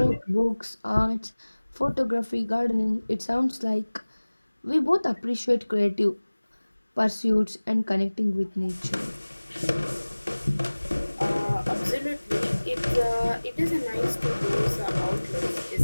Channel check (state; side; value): inverted; both; correlation -1.00